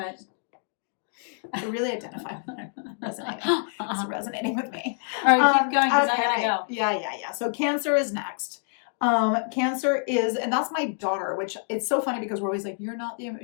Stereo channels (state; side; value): silent; right; 60 dB below the other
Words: I really identify with it. Resonating. It's resonating with me. All right, keep going because I gotta go. Yeah. So Cancer is next. Cancer is, and that's my daughter, which it's so funny because we're always like, you're not